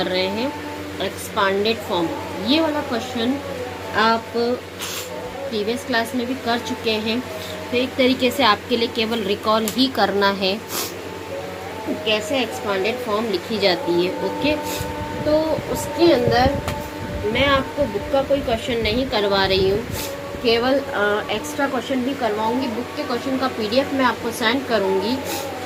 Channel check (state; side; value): identical; both; correlation 1.00